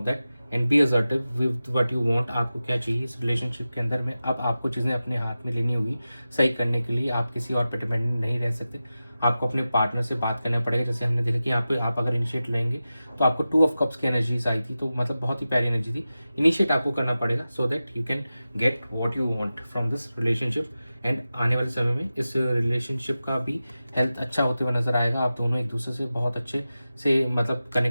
that, and be assertive with what you want. आपको क्या चाहिए इस रिलेशनशिप के अंदर में, अब आपको चीज़ें अपने हाथ में लेनी होगी सही करने के लिए। आप किसी और पर डिपेंडेंट नहीं रह सकते, आपको अपने पार्टनर से बात करना पड़ेगा। जैसे हमने देखा कि यहाँ पे आप अगर इनिशिएट लेंगे तो आपको 2 of cups की एनर्जीज आई थी, तो मतलब बहुत ही प्यारी एनर्जी थी। इनिशिएट आपको करना पड़ेगा so that you can get what you want from this relationship. And आने वाले समय में इस रिलेशनशिप का भी हेल्थ अच्छा होते हुए नजर आएगा। आप दोनों एक दूसरे से बहुत अच्छे से मतलब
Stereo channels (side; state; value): both; inverted; correlation -0.94